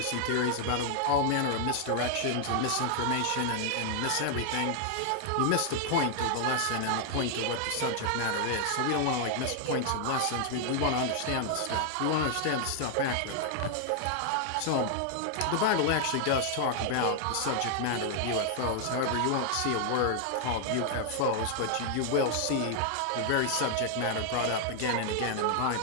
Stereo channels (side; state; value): both; different; correlation 0.00